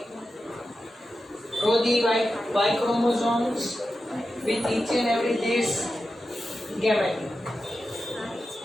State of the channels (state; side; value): normal; both; correlation 0.91